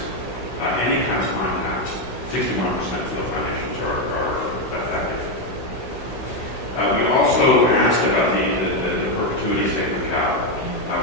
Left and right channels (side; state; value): right; late; 16 ms